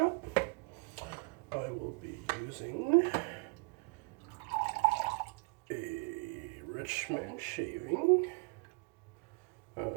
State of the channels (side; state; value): left; quieter; 31.6 dB